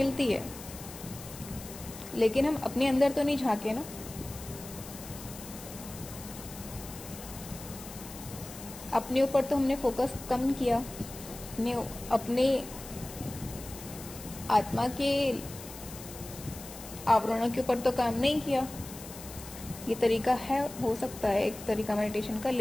है, लेकिन हम अपने अंदर तो नहीं झांके ना। अपने ऊपर तो हमने फोकस कम किया, अपने आत्मा के आवरणों के ऊपर तो काम नहीं किया। ये तरीका है, हो सकता है एक तरीका मेडिटेशन का,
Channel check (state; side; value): noise; left; hiss, 14 dB below the sound